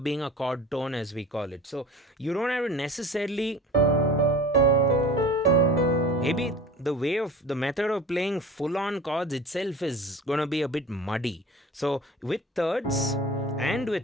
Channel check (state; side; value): normal; both; correlation 0.38